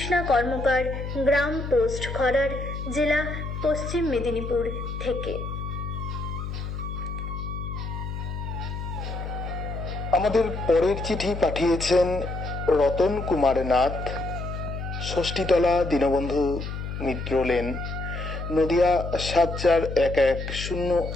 কর্মকার, গ্রাম পোস্ট খরার, জেলা পশ্চিম মেদিনীপুর থেকে। আমাদের পরের চিঠি পাঠিয়েছেন রতন কুমার নাথ, ষষ্ঠীতলা দীনবন্ধু মিত্র লেন, নদিয়া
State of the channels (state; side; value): noise; left; hum, 6 dB below the sound